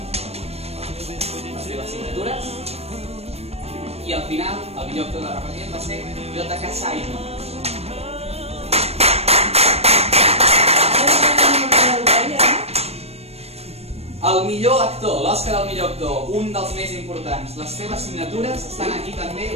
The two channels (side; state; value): left; late; 0.30 ms